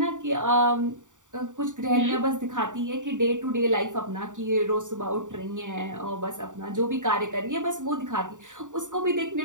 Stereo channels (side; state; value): left; late; 0.86 ms